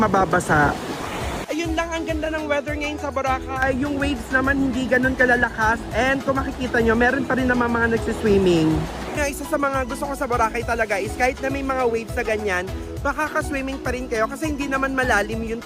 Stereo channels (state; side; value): identical; both; correlation 1.00